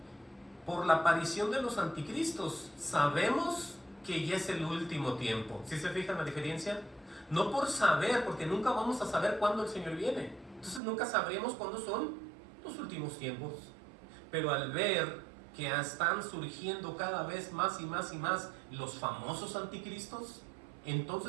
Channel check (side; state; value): left; drops out; at 10.8 s